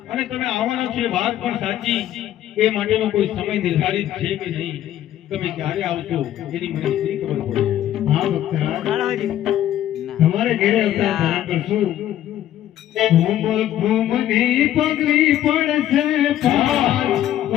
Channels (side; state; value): right; quieter; 12.1 dB